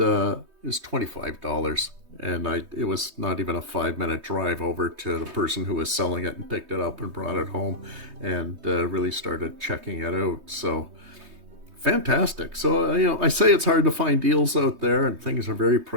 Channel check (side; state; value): left; late; 3.2 ms